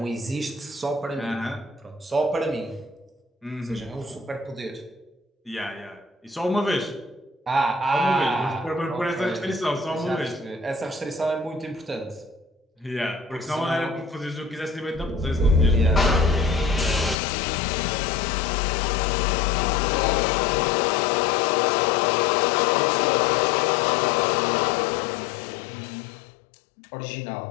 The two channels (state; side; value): drops out; right; at 17.2 s